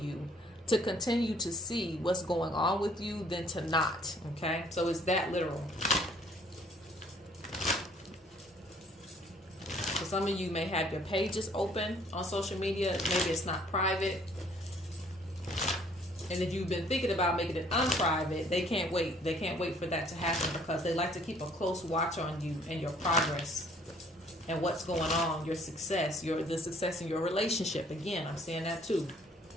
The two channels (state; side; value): normal; both; correlation 0.60